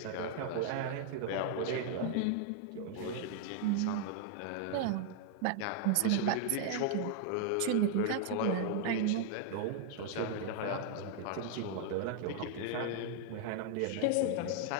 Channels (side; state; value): both; different; correlation -0.01